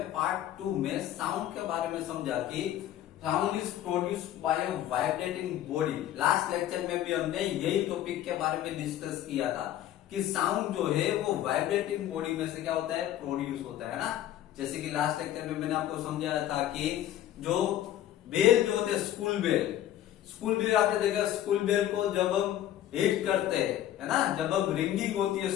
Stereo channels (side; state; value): right; quieter; 12.3 dB